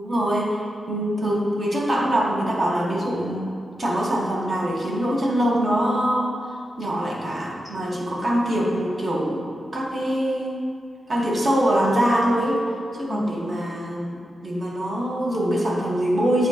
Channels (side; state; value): both; normal; correlation 0.88